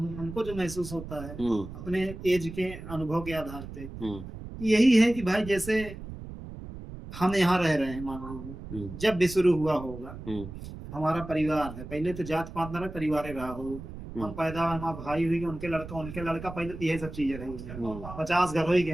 हमको जो महसूस होता है अपने एज के अनुभव के आधार पे यही है कि भाई जैसे हम यहाँ रह रहे हैं, मान लो जब भी शुरू हुआ होगा हमारा परिवार है, पहले तो जात पात ना रहे, परिवार रहा हो, हम पैदा हमारा भाई हुई उनके लड़का पहले तो यही सब चीजें रही, 50 घर हो ही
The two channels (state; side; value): noise; right; rumble, 11 dB below the sound